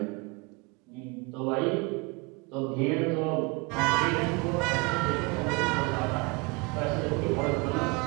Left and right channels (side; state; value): left; quieter; 28.0 dB